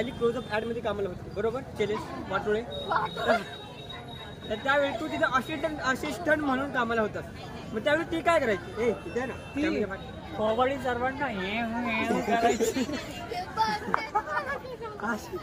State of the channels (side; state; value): both; identical; correlation 1.00